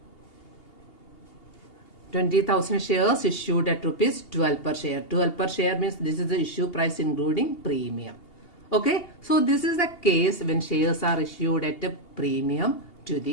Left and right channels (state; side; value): late; right; 2.8 ms